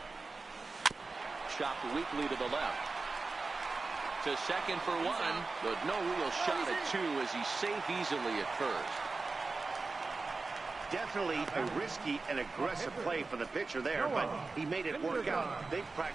Chopped weakly to the left. To second for one, but no real shot at two as he's safe easily at first. Definitely a risky and aggressive play for the pitcher there, but he made it work out. They've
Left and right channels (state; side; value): quieter; left; 3.9 dB